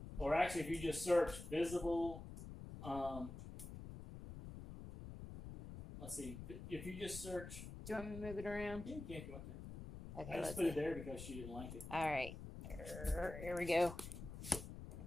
or actually if you just search visible, let's see, if you just search. Do you want me to move it around? Yeah, you can if you want to. Okay, I just put it there because she didn't like it. All right. Here we go.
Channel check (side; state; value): left; noise; rumble, 10 dB below the sound